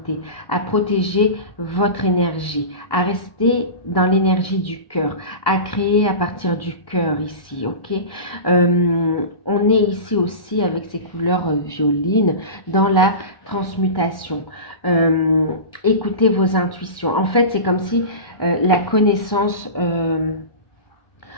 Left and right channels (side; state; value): right; late; 1.1 ms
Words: à protéger votre énergie, à rester dans l'énergie du cœur, à créer à partir du cœur ici, ok. On est ici aussi avec ces couleurs violines dans la transmutation. Écoutez vos intuitions. En fait, c'est comme si la connaissance,